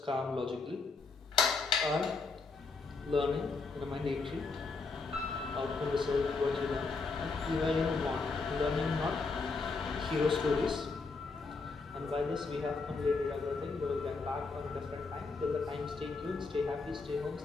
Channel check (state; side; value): quieter; right; 4.2 dB